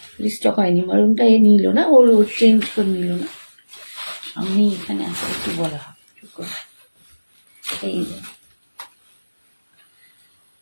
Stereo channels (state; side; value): inverted; both; correlation -1.00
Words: রিস্টক হয়নি, মারুনটা এ নিল না, ওর চেঞ্জ করে নিল না। আমি এখানে আসলে কিছু বলা হবে, এই দেখো,